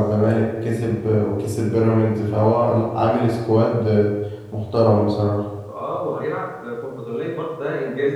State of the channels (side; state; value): both; identical; correlation 1.00